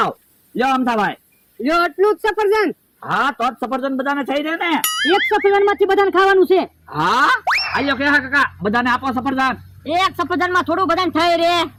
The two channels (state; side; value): identical; both; correlation 1.00